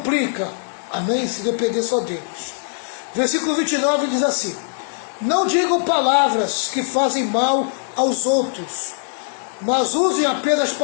amém, se depender só deles. Versículo 29 diz assim: não digam palavras que fazem mal aos outros, mas usem apenas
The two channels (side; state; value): right; silent; digital silence